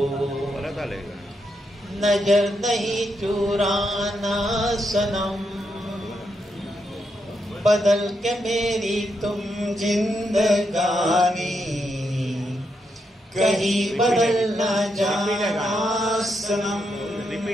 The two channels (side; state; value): both; normal; correlation 0.82